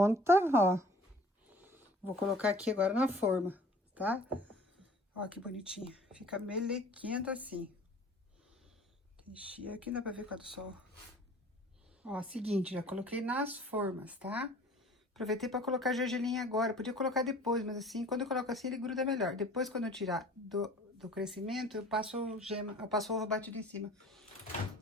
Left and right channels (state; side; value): normal; both; correlation 0.48